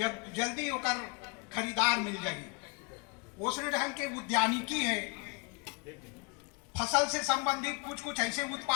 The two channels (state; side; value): quieter; right; 33.4 dB